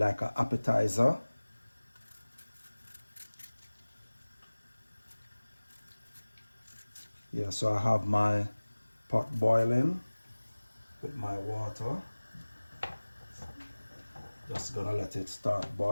an appetizer. Yeah, so I have my pot boiling with my water. Just gonna let it start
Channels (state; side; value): inverted; both; correlation -1.00